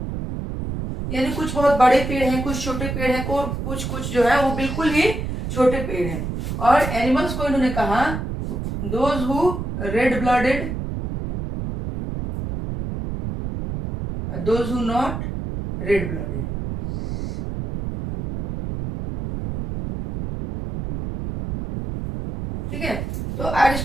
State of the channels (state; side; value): noise; right; rumble, 5 dB below the sound